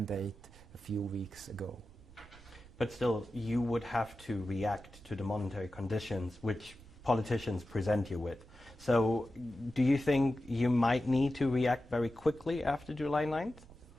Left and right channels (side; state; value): right; noise; rumble, 21 dB below the sound